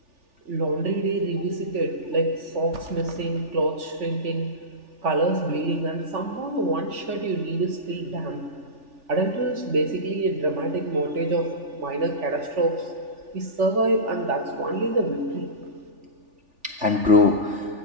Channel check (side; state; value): left; late; 3.4 ms